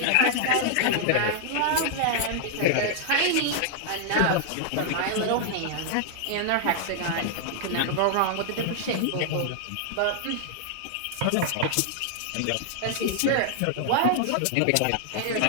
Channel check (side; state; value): both; different; correlation -0.01